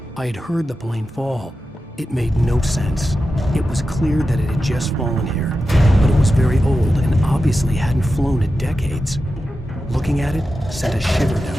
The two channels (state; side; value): normal; both; correlation 0.91